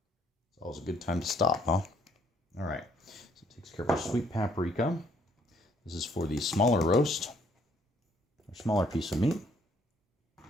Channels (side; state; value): both; normal; correlation 0.65